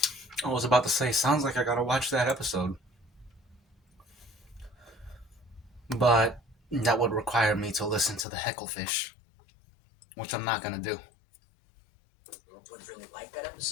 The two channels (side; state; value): right; drops out; at 8.2 s